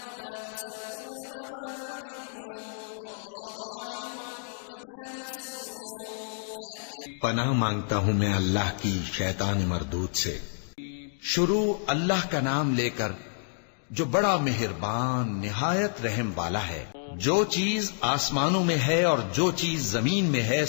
मा तुसिर्रून व मा तुअलिनून वल्लाहु अलीमुन बिज़ातिस सुदूर। पनाह मांगता हूँ मैं अल्लाह की शैतान मरदूद से। शुरू अल्लाह का नाम लेकर जो बड़ा मेहरबान निहायत रहम वाला है। जो चीज आसमानों में है और जो चीज जमीन में है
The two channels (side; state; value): right; silent; digital silence